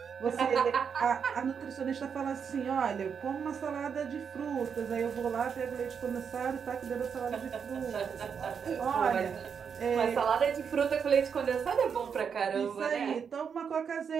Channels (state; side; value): quieter; left; 6.8 dB